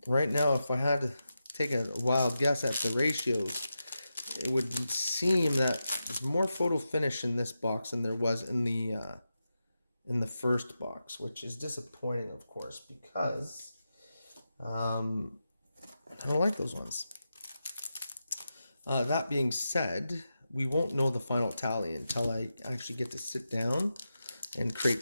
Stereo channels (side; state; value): both; inverted; correlation -0.89